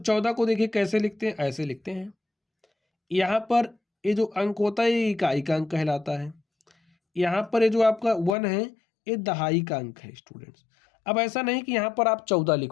को देखिए कैसे लिखते हैं, ऐसे लिखते हैं। यहाँ पर ये जो अंक होता है ये इकाई का अंक कहलाता है। यहाँ पर ये जो आपका 1 है ये दहाई का अंक है स्टूडेंट्स। अब ऐसा नहीं कि यहाँ पर आप 14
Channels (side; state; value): right; drops out; at 8.3 s